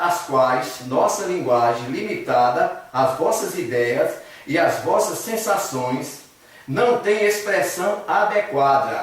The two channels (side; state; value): both; identical; correlation 1.00